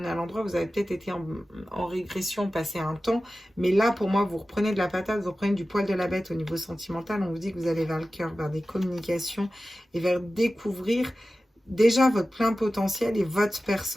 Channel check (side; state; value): both; normal; correlation 0.95